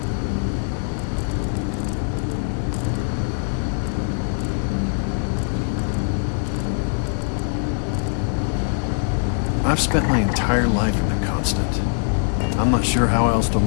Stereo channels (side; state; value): right; silent; digital silence